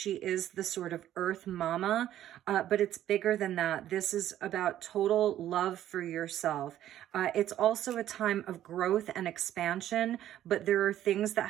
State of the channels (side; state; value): left; quieter; 12.1 dB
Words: is the sort of earth mama, but it's bigger than that. This is about total love for yourself. It's also a time of growth and expansion, but there are things that